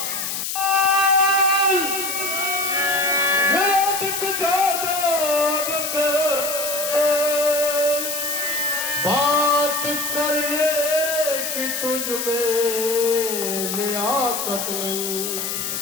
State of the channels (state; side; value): noise; left; hiss, 3 dB below the sound